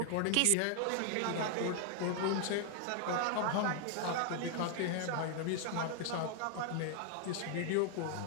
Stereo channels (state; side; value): different; both; correlation 0.00